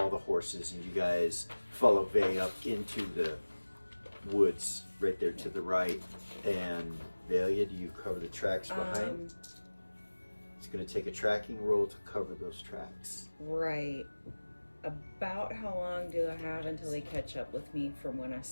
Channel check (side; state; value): both; inverted; correlation -1.00